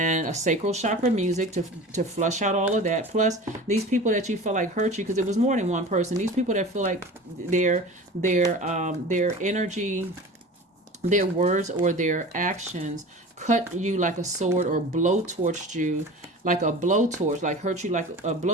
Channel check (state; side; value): normal; both; correlation 0.37